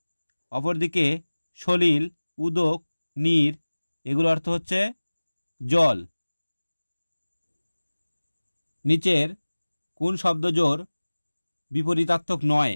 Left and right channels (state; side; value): inverted; both; correlation -1.00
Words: অপরদিকে সলিল, উদক, নীর এগুলো অর্থ হচ্ছে জল। নিচের কোন শব্দজোড় বিপরীতার্থক নয়?